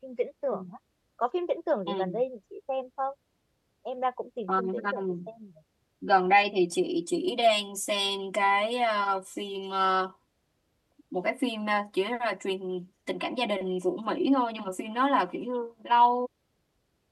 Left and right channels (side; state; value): both; identical; correlation 1.00